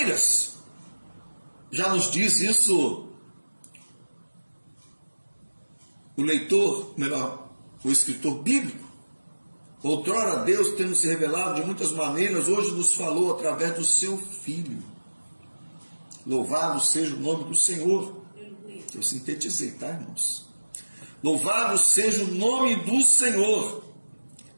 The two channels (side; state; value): both; inverted; correlation -1.00